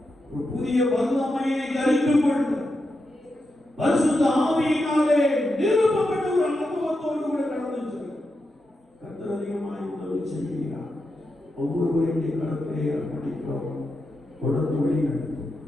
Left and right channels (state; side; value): normal; both; correlation 0.87